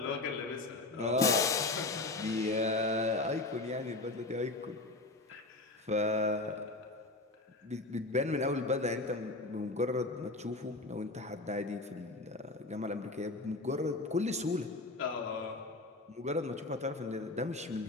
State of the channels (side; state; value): right; quieter; 3.0 dB